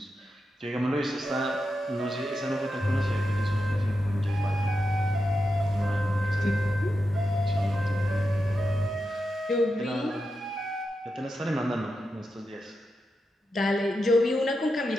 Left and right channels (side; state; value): both; normal; correlation 0.88